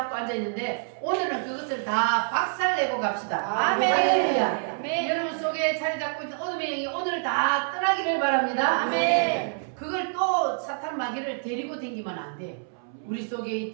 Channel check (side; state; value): left; silent; 60 dB below the other